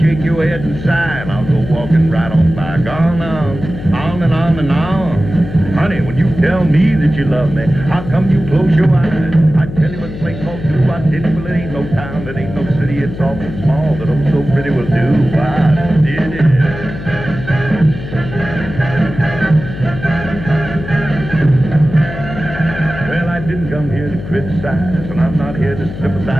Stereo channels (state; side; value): noise; left; hum, 10 dB below the sound